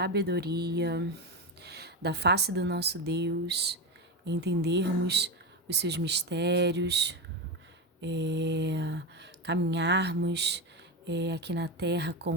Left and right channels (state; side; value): normal; both; correlation 0.15